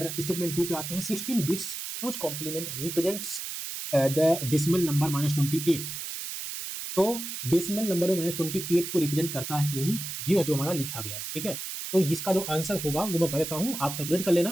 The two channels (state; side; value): noise; right; hiss, 6 dB below the sound